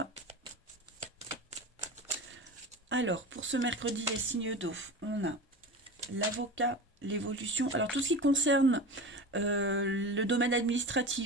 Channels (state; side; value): normal; both; correlation 0.30